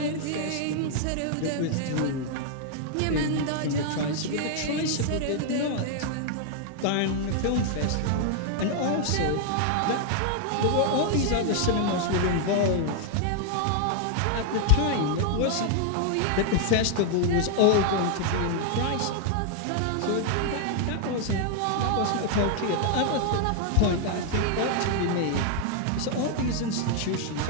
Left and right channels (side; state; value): both; different; correlation 0.00